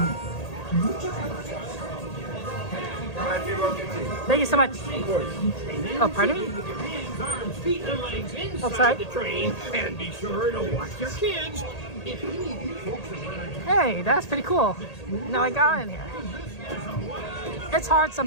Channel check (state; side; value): late; right; 1.8 ms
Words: Thank you so much. Oh, pardon me? Feet and legs inside outside the train, and be sure to watch your kids. Hey, that's pretty cool. Now I got in here. It's hard